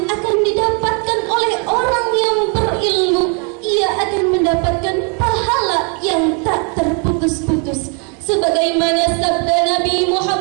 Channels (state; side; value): quieter; left; 37.2 dB